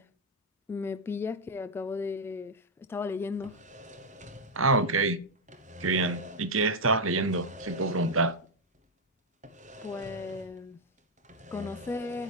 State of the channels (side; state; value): both; normal; correlation 0.00